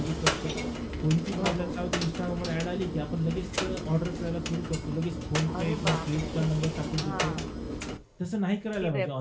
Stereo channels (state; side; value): identical; both; correlation 1.00